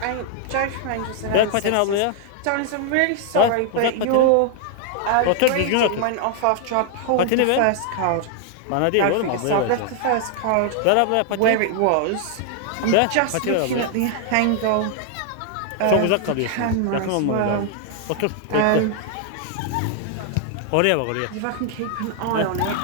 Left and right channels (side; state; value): both; different; correlation 0.00